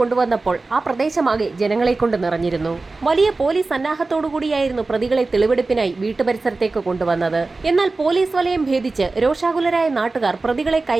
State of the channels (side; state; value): left; quieter; 3.6 dB